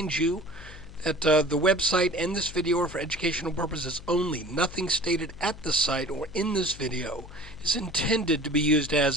you that the website and this video are for educational purposes only. Nothing stated at the site or in this video is intended to be used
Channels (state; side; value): noise; left; hum, 16 dB below the sound